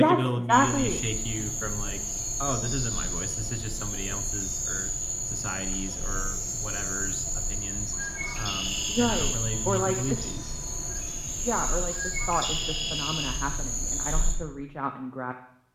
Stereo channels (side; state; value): both; identical; correlation 1.00